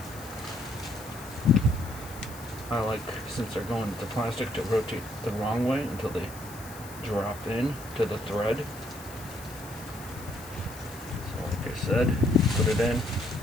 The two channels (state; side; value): noise; left; hiss, 17 dB below the sound